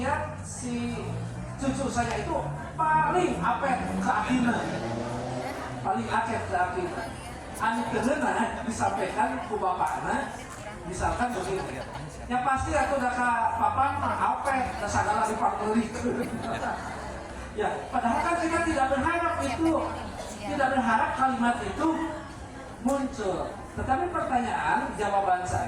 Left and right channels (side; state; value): both; identical; correlation 1.00